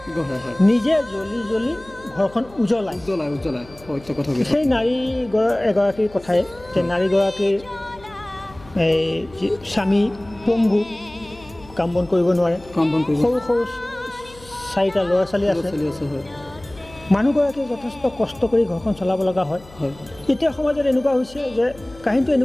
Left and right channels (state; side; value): noise; left; hum, 22 dB below the sound